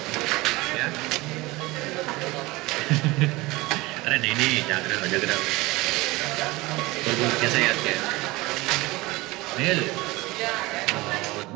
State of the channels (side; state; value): left; quieter; 21.4 dB